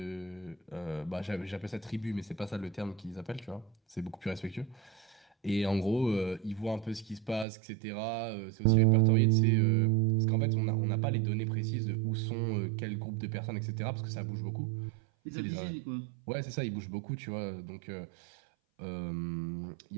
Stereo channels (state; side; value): drops out; left; at 7.5 s